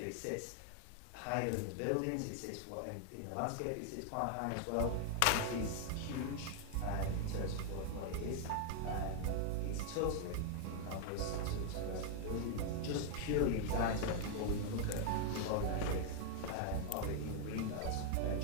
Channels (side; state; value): both; different; correlation 0.00